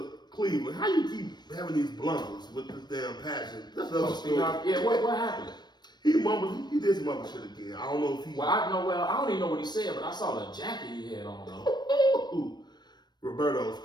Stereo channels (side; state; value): right; late; 0.21 ms